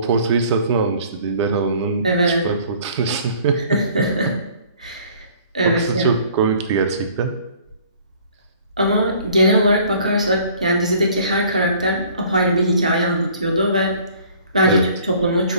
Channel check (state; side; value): inverted; both; correlation -0.54